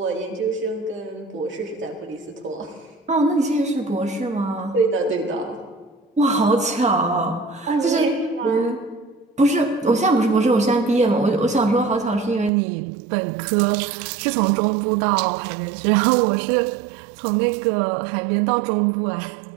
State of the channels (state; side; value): drops out; left; at 12.5 s